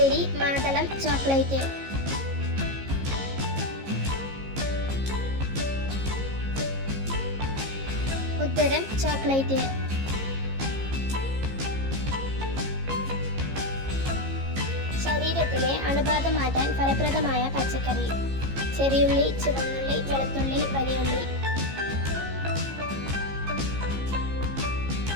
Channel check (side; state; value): left; late; 15 ms